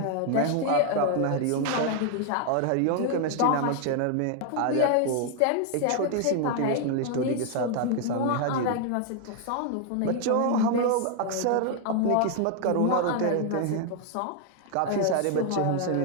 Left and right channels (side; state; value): both; different; correlation 0.00